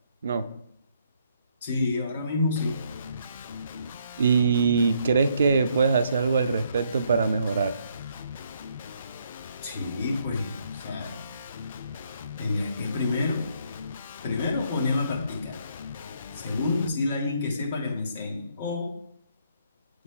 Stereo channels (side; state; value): both; inverted; correlation -0.71